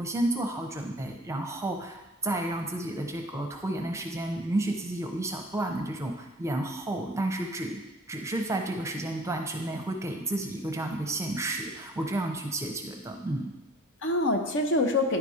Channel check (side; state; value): both; normal; correlation 0.49